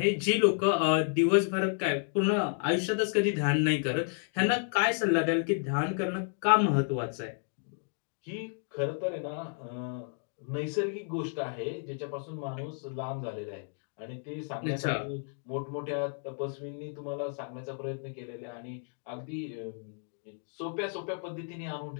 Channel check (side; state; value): right; silent; 55 dB below the other